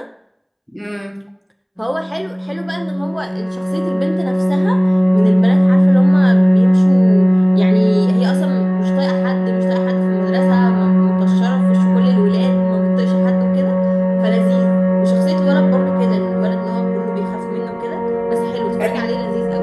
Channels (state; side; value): identical; both; correlation 1.00